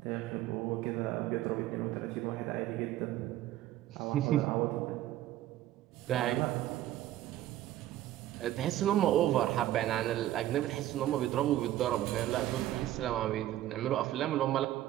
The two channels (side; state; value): left; quieter; 13.9 dB